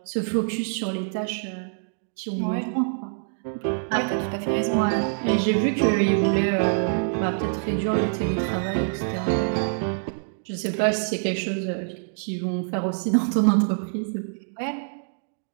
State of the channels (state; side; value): silent; left; digital silence